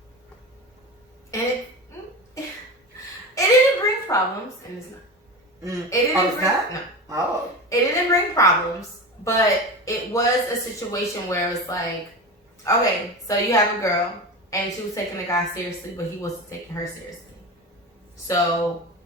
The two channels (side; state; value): both; normal; correlation 0.26